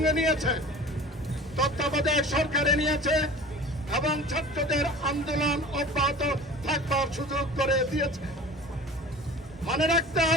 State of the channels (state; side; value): normal; both; correlation 0.40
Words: নিয়েছে, তত্ত্বাবধায়ক সরকারে নিয়েছে এবং ছাত্রদের আন্দোলন অব্যাহত থাকবার সুযোগ করে দিয়েছে। মনে রাখতে